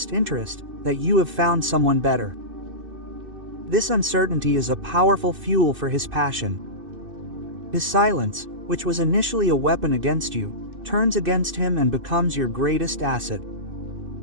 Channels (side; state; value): left; late; 2.6 ms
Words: interest, that you have found someone better. This uncertainty is a powerful fuel for his passion. His silence, which was initially a weapon against you, turns against him and becomes your greatest asset.